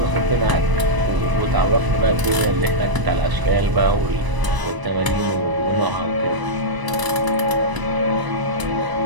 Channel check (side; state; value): left; late; 1.0 ms